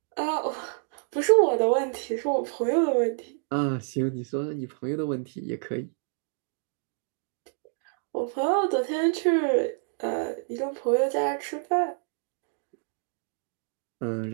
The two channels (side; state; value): left; silent; 58 dB below the other